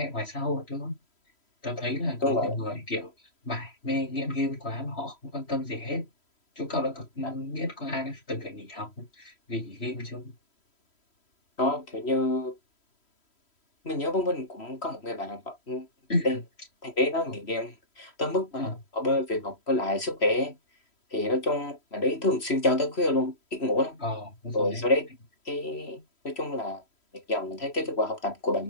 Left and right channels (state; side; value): late; right; 3.1 ms